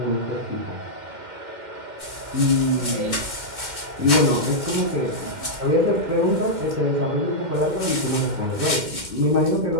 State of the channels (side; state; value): left; late; 2.1 ms